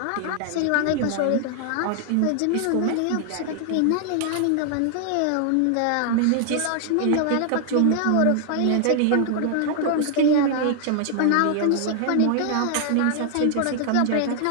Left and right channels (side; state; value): both; different; correlation 0.00